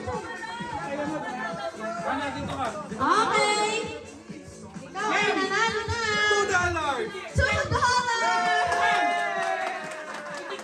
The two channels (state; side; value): identical; both; correlation 1.00